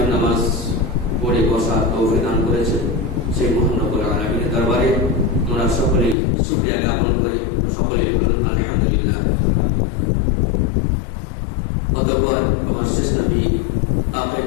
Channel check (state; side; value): drops out; right; at 6.2 s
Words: নামাজ পড়ে বসার তৌফিক দান করেছেন। সেই মহান রব্বুল আলামিনের দরবারে আমরা সকলেই শুকরিয়া জ্ঞাপন করি, সকলেই বলুন আলহামদুলিল্লাহ। অতঃপর আমার শেষ নবী আখির